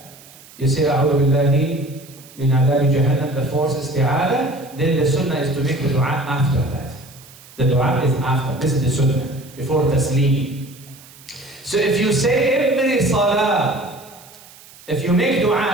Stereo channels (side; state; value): right; noise; hiss, 22 dB below the sound